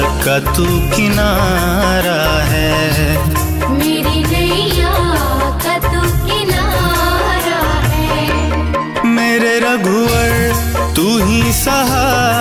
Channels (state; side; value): identical; both; correlation 1.00